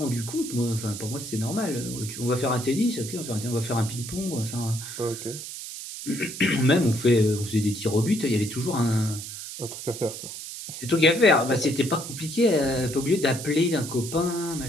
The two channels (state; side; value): noise; right; hiss, 9 dB below the sound